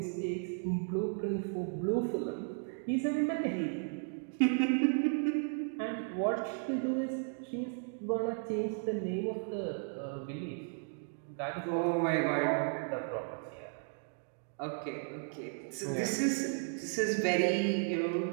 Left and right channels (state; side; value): silent; left; 55 dB below the other